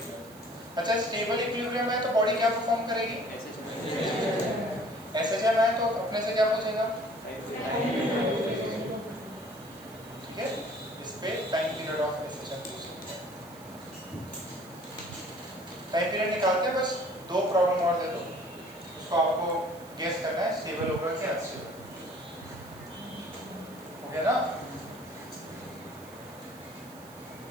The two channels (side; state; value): right; noise; hiss, 21 dB below the sound